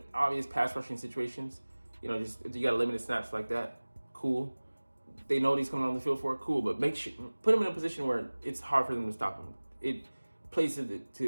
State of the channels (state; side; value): inverted; both; correlation -1.00